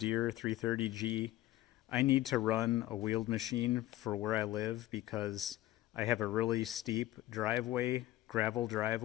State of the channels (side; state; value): right; quieter; 15.4 dB